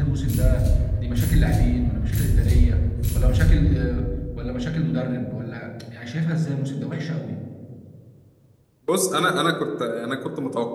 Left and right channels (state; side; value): identical; both; correlation 1.00